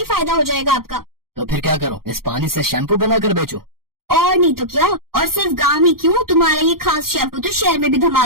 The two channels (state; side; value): late; left; 0.93 ms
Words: फायदा हो जाएगा आपका। तो फिर क्या करूं, इस पानी से शैम्पू बनाकर बेचूं? और नहीं तो क्या, और सिर्फ गांव ही क्यों, तुम्हारा ये खास शैम्पू तो शहर में भी